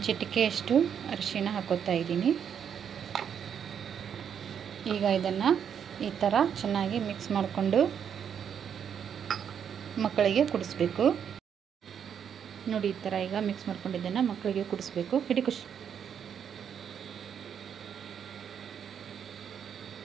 ಚಿಟಿಕೆಯಷ್ಟು ಅರಿಶಿಣ ಹಾಕೋತಾ ಇದ್ದೀನಿ. ಈಗ ಇದನ್ನು ಈ ಥರ ಚೆನ್ನಾಗಿ ಮಿಕ್ಸ್ ಮಾಡಿಕೊಂಡು ಮಕ್ಕಳಿಗೆ ಕುಡಿಸ್ಬೇಕು ನೋಡಿ. ಈ ಥರ ಈಗ ಮಿಕ್ಸ್ ಮಾಡ್ಕೊಂಡಿದ್ದನ್ನು ಮಕ್ಕಳಿಗೆ ಕುಡಿಸ್ಬೇಕು. ಹಿಡಿ ಖುಷಿ.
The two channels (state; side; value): quieter; left; 8.1 dB